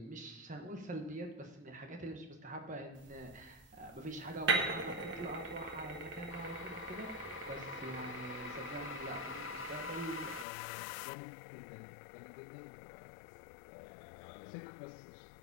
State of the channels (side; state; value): right; drops out; at 10.5 s